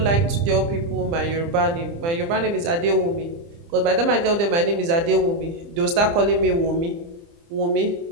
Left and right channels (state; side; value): late; left; 30 ms